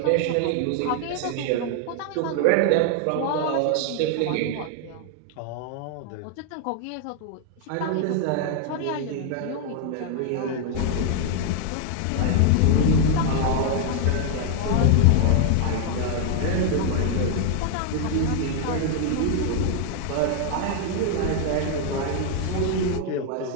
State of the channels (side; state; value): both; different; correlation 0.00